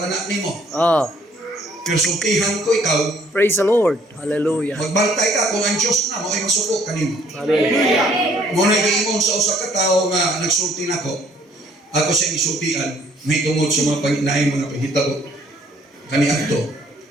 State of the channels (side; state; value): both; normal; correlation 0.62